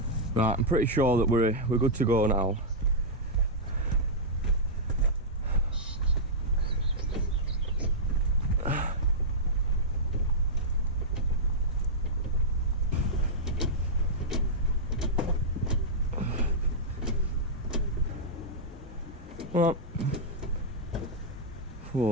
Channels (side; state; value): both; normal; correlation -0.09